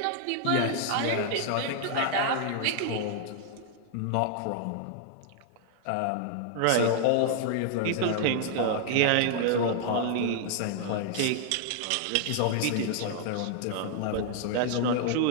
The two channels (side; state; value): both; different; correlation 0.00